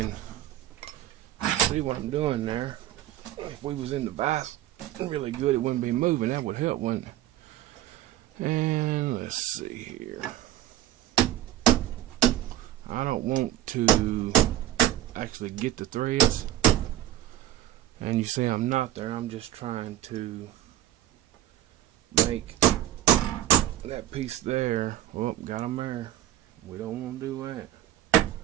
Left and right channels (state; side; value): quieter; left; 13.3 dB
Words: see what I'm doing there. If we was in the vise really good, it wouldn't be moving. That would help, wouldn't it? And let's see here. I don't want to actually get the threads. And you see I'm not there. I'm just trying to make that piece there. Oh, got them there. We don't want to do that.